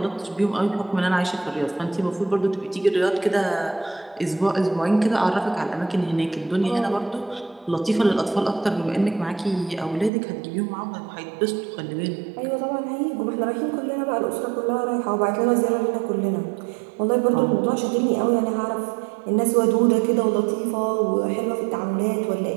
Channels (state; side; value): drops out; left; at 10.1 s